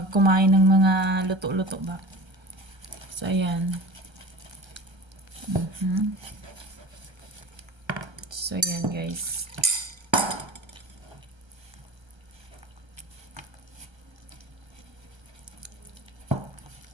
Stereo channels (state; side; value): late; left; 1.3 ms